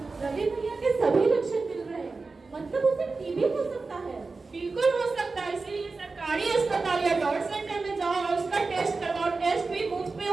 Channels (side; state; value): left; quieter; 4.0 dB